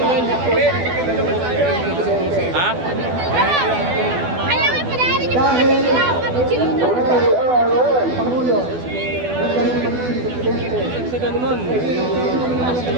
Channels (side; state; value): left; late; 12 ms